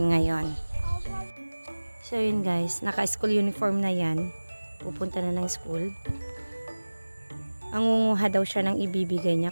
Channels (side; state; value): both; inverted; correlation -1.00